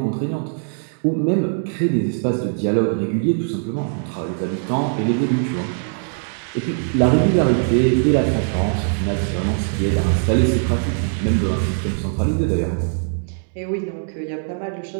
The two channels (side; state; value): left; silent; 65 dB below the other